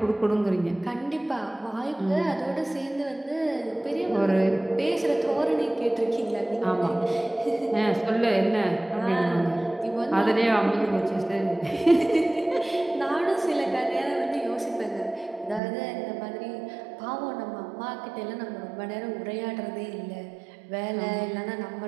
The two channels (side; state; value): left; drops out; at 15.6 s